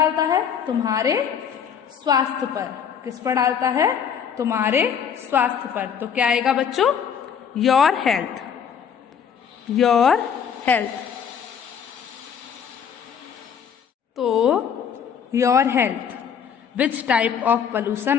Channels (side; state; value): right; quieter; 7.6 dB